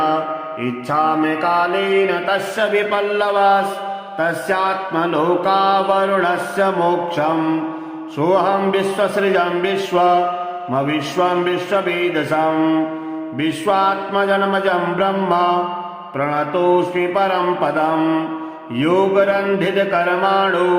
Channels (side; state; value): both; identical; correlation 1.00